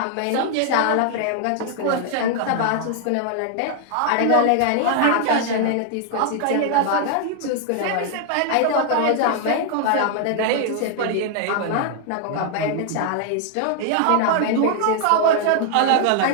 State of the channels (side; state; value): both; different; correlation 0.00